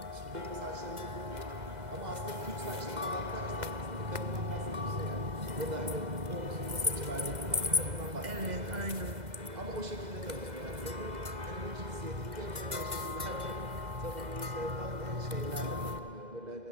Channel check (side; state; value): left; late; 2.0 ms